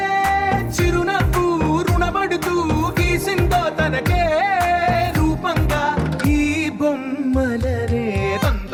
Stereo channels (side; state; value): both; identical; correlation 1.00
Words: చిరునవ్వు రుణపడుతూ గీసిందో తనకే రూపంగా ఈ బొమ్మలనే.